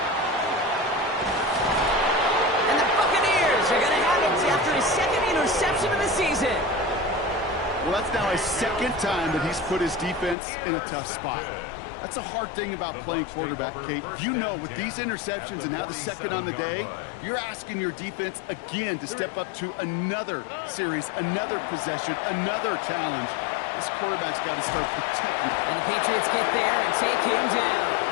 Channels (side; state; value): right; drops out; at 10.4 s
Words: And the Buccaneers are going to have it after his second interception of the season. Well, that's now his second time that he's put his defense in a tough spot. That's a hard thing about playing quarterback, Kate. You know, with these interceptions and now the second on the day, you're asking your defense again to step up to another series, another possession, another challenge. This quarterback's got to start protecting. And the Patriots get there and take him down.